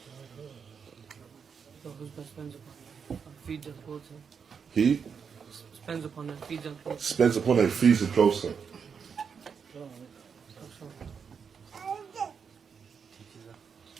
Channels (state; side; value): quieter; left; 6.5 dB